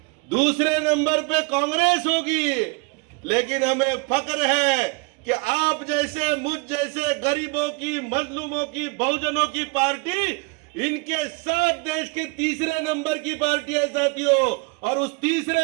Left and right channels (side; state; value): left; quieter; 29.6 dB